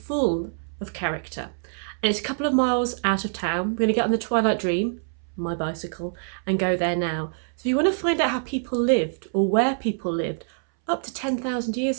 of character. And it's a couple of miles out of town. We're going to get on the Twilight Dream, my bicycle, and go there now. So if you want to find out how people lived or where people lived up to 10,000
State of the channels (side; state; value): left; silent; 62 dB below the other